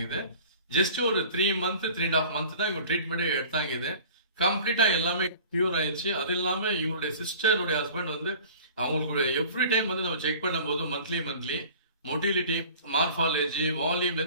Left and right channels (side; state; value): both; inverted; correlation -0.45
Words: ஜஸ்ட் ஒரு 3 மந்த் 3.5 மந்த் தான் இவங்க ட்ரீட்மெண்ட்டே எடுத்தாங்க. கம்ப்ளீட்டா எல்லாமே கியூர் ஆயிடுச்சு. அது இல்லாம இவங்களுடைய சிஸ்டருடைய ஹஸ்பண்ட் வந்து அவங்களுக்கு எவ்ரி டைம் வந்து நம்ம செக் பண்ணும்போது மந்த்லி மொட்டிலிட்டி, மார்பாலஜி, வால்யூம்ல